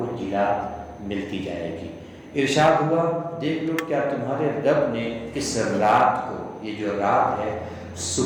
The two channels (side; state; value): both; identical; correlation 1.00